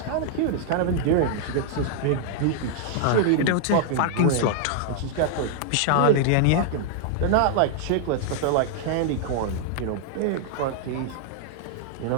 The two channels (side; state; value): both; different; correlation -0.01